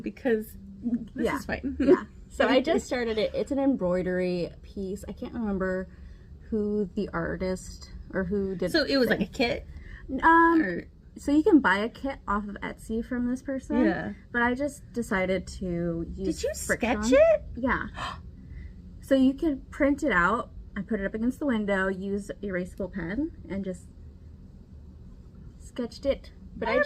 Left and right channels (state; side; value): identical; both; correlation 1.00